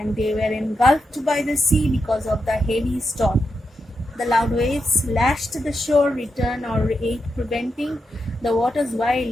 they were engulfed by the sea because of the heavy storm. The loud waves lashed the shore, return or aid preventing. The waters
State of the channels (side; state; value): both; normal; correlation 0.86